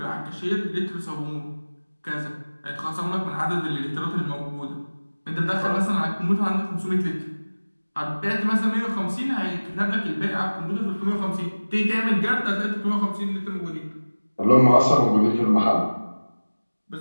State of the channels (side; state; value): both; inverted; correlation -1.00